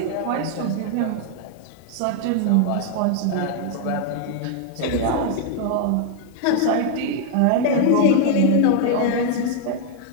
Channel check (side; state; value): both; different; correlation 0.00